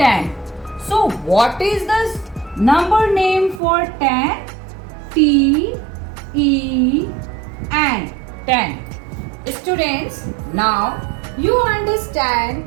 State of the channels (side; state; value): left; drops out; at 3.6 s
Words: So what is the number name for 10? T E N. 10. Students, now you